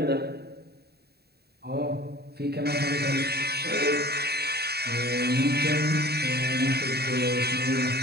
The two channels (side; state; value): left; late; 0.47 ms